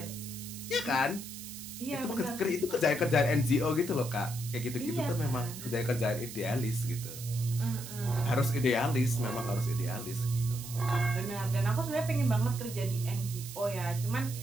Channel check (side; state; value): right; noise; hiss, 11 dB below the sound